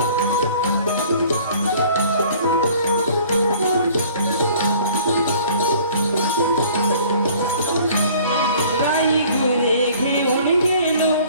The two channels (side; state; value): both; inverted; correlation -0.52